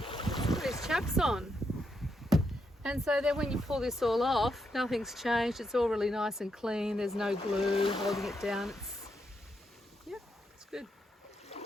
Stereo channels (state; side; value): normal; both; correlation 0.81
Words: Put his chaps on. And so then when you pull this all off, nothing's changed. It's all really nice and clean. There's no glue holding it down. It's good.